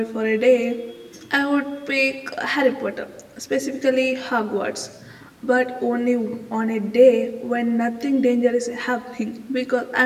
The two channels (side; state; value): both; identical; correlation 1.00